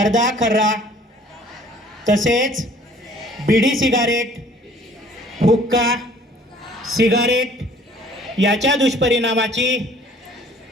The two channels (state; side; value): normal; both; correlation 0.54